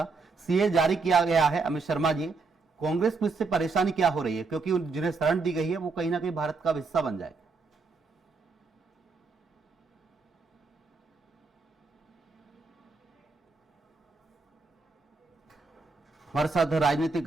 सीए जारी किया गया है। अमित शर्मा जी, कांग्रेस में इससे परेशानी क्या हो रही है, क्योंकि जिन्हें शरण दी गई है वो कहीं ना कहीं भारत का हिस्सा बन जाए? हमारे साथ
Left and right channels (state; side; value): quieter; left; 4.2 dB